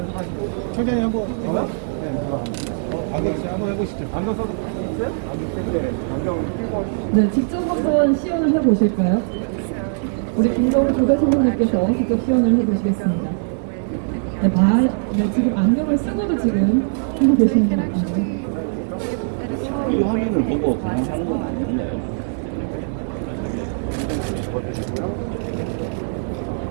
청장님 한번 안경 한번 해보시죠. 안경 써도 있어요? 안경 끼고 네, 직접 한번 시연을 해보실까요? 우리 김동훈 조대 선생님께서 직접 시연을 해주시겠습니다. 네, 지금 안경을 쓰고도 지금 하고 계시는 것 같아요. 이 화면을 보고 그냥 하는 건 아닌가요?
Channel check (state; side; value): silent; left; digital silence